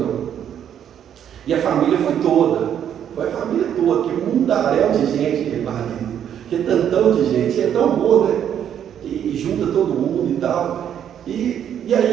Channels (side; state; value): left; quieter; 9.4 dB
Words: E a família foi a família toda, que mundaréu de gente, marido, que tantão de gente, é tão bom, né? E junta todo mundo e tal. E